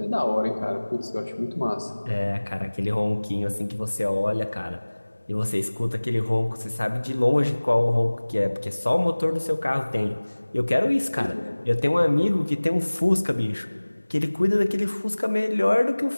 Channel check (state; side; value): inverted; both; correlation -1.00